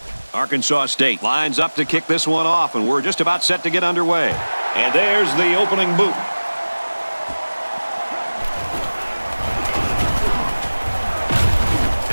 Arkansas State lines up to kick this one off, and we're just about set to get underway. And there's the opening boot.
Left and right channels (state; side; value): inverted; both; correlation -1.00